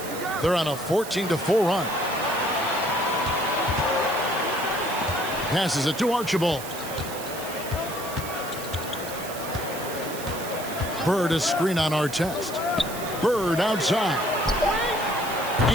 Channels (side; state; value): right; noise; hiss, 11 dB below the sound